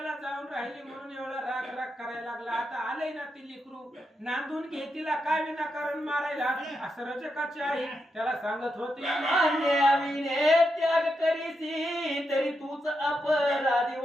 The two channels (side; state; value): both; normal; correlation 0.85